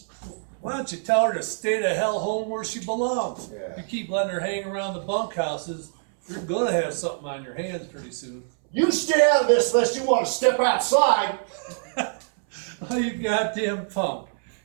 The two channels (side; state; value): left; silent; 62 dB below the other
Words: Why don't you tell her to stay the hell home where she belongs? Yeah. You keep letting her hang around the bunkhouses, you're gonna have something on your hands pretty soon. You stay out of this unless you want to step outside. Oh, you goddamn punk.